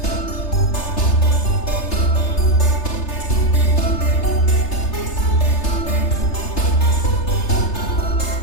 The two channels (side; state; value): right; late; 3.3 ms